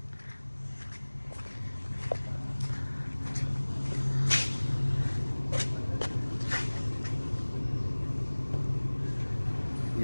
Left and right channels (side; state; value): both; inverted; correlation -1.00